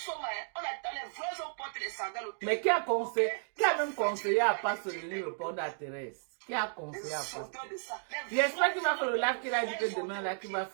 on attend les vrais hommes portent les sandales au pied. Mais qui a conseillé? Qui a même conseillé à pas se répondre à Thérèse? Qui a conseillé à pas? J'espère qu'il va faire le live qu'il a dit que demain là qu'il va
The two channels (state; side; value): silent; left; digital silence